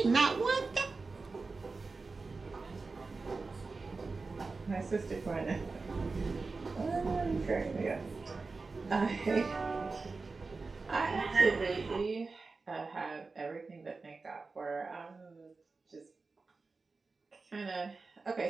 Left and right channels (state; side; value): quieter; left; 4.0 dB